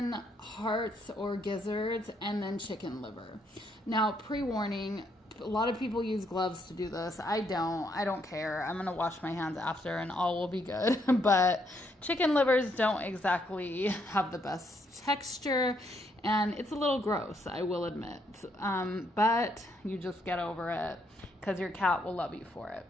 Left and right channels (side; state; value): both; normal; correlation 0.74